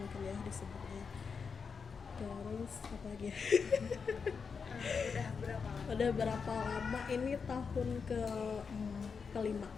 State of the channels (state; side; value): quieter; right; 5.6 dB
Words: ya disebutnya. Terus apa lagi ya? Udah berapa lama? Ini tahun